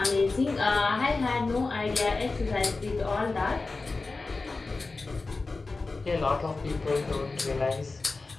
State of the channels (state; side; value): quieter; right; 3.7 dB